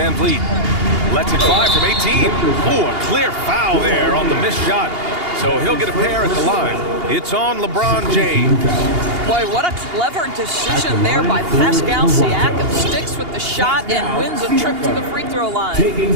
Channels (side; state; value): left; late; 2.8 ms